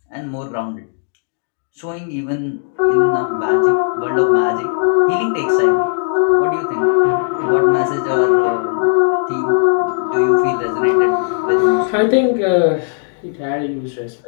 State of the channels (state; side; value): silent; right; digital silence